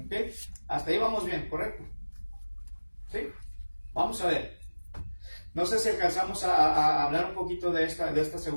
¿Ok? Hasta ahí vamos bien, ¿correcto? ¿Sí? Vamos a ver. No sé si alcanzamos a hablar un poquito de esta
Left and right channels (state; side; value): inverted; both; correlation -1.00